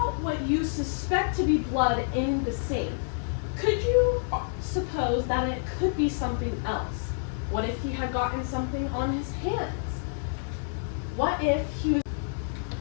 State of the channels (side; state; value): right; silent; digital silence